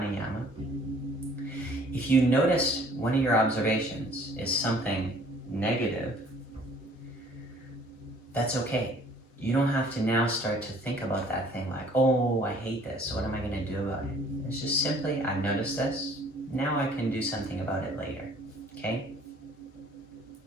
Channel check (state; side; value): normal; both; correlation 0.56